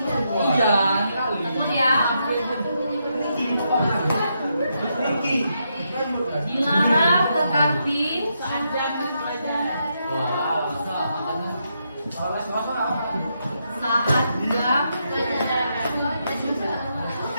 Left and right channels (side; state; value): both; inverted; correlation -0.81